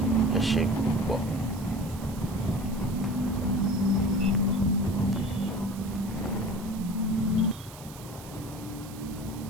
Ẹ ṣé púpọ̀.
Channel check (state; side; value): noise; right; hiss, 18 dB below the sound